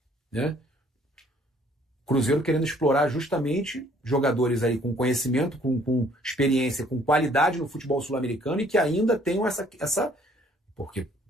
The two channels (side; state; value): both; normal; correlation 0.61